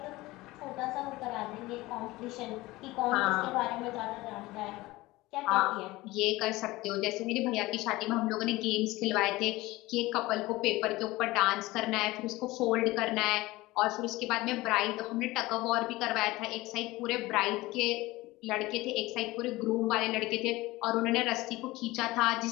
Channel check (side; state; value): right; quieter; 19.6 dB